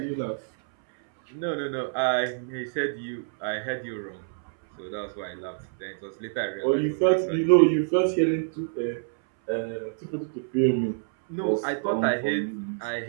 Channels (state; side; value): silent; left; 60 dB below the other